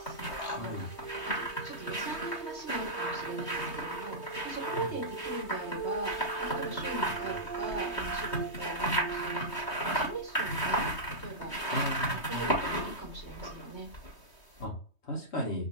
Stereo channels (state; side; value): late; right; 3.2 ms